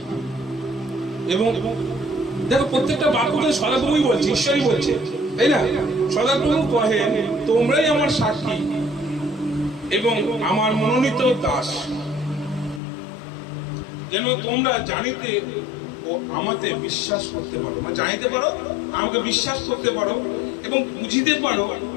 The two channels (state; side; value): drops out; right; at 12.8 s